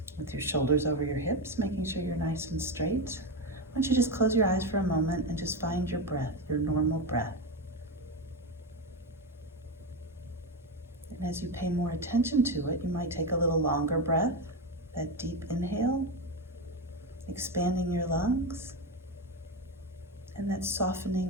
with your shoulders over your hips, making sure you're nice and straight, why don't you just close your eyes for a moment and just find your breath, your normal breath. And as you pay more attention to it, you might take a little longer breath, that deep inhale, expanding your lungs, and that softening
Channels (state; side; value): normal; both; correlation 0.14